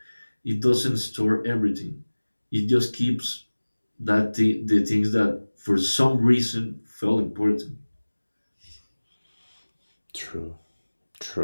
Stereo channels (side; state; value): both; inverted; correlation -1.00